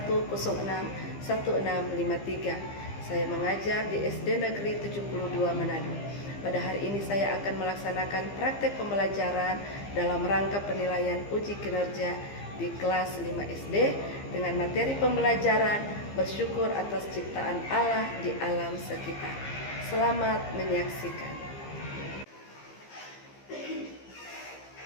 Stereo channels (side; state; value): right; late; 15 ms